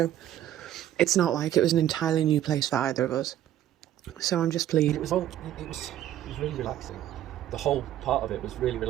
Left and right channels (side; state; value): left; quieter; 12.0 dB